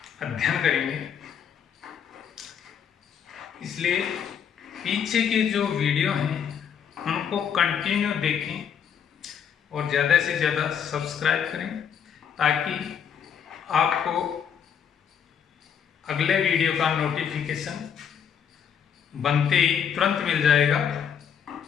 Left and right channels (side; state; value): right; quieter; 7.9 dB